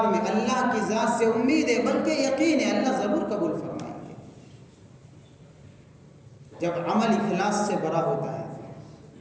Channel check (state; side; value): identical; both; correlation 1.00